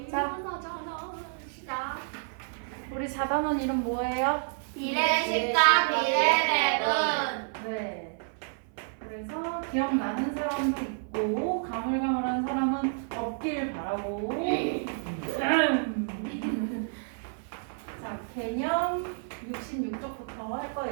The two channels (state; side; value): silent; left; 58 dB below the other